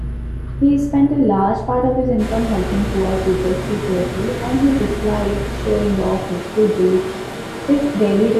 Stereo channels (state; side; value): identical; both; correlation 1.00